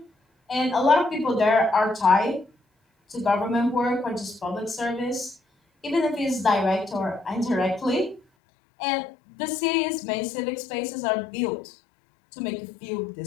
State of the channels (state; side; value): drops out; right; at 8.2 s